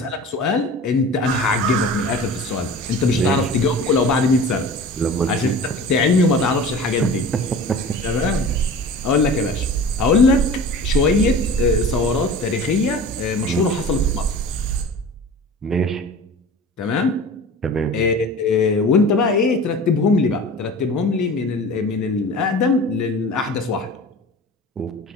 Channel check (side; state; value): both; normal; correlation 0.38